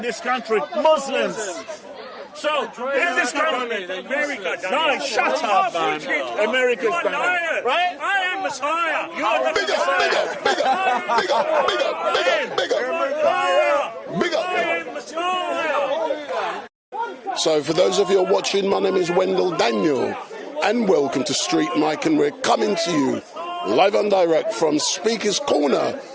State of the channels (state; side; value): identical; both; correlation 1.00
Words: country? Muslims. So, if this country... America, no, shut up, man. America's done it, right? I am Messiah. Big up. So for those of you who are watching, my name is Wendell Daniel and welcome to Street Mike, and we're coming to you live and direct from Speaker's Corner